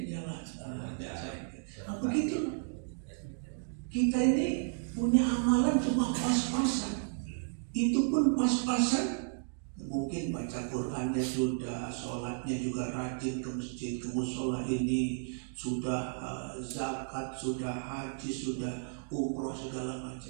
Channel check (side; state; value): left; silent; digital silence